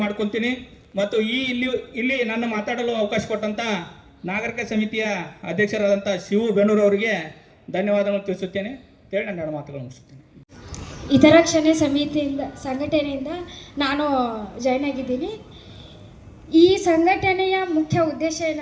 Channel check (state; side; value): identical; both; correlation 1.00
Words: ಮಾಡ್ಕೊಳ್ತೀನಿ. ಮತ್ತು ಇಲ್ಲಿ ನನ್ನ ಮಾತಾಡಲು ಅವಕಾಶ ಕೊಟ್ಟಂತ ನಾಗರಿಕ ಸಮಿತಿಯ ಅಧ್ಯಕ್ಷರಾದಂಥ ಶಿವು ಬೆನ್ನೂರು ಅವರಿಗೆ ಧನ್ಯವಾದಗಳನ್ನು ತಿಳಿಸುತ್ತೇನೆ. ಹೇಳಿ ನನ್ನ ಎರಡು ಮಾತುಗಳು ಮುಗಿಸುತ್ತೇನೆ. ಹಿತರಕ್ಷಣೆ ಸಂಘಟನೆಯಿಂದ ನಾನು ಜಾಯ್ನ್ ಆಗಿದ್ದೀನಿ. ಈ ಸಂಘಟನೆಯ ಮುಖ್ಯ ಉದ್ದೇಶ